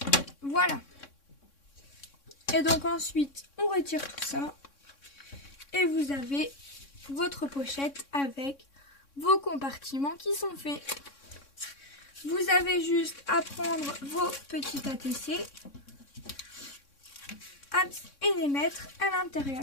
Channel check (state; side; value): late; right; 3.6 ms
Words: Voilà. Et donc ensuite, on retire tout ça. Et vous avez votre pochette avec vos compartiments qui sont faits. Vous avez juste à prendre vos petits ATC et les mettre à